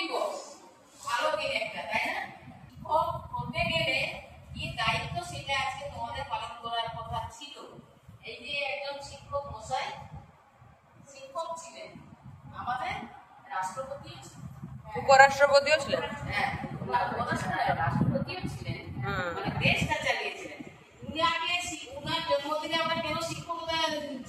ভালো দিন একটা, তাই না? শিক্ষক হতে গেলে কি দায়িত্ব সেটা আজকে তোমাদের পালন করার কথা ছিল। এই যে একজন শিক্ষক মশাই শিক্ষক ছিলেন, আমাদের রাষ্ট্রপতিও ছিলেন, উপরাষ্ট্রপতিও ছিলেন। হ্যাঁ রাষ্ট্রপতিও ছিলেন, মানে দেশটা চালিয়েছিলেন। উনার জন্মদিনে আমরা কেন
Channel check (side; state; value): both; identical; correlation 1.00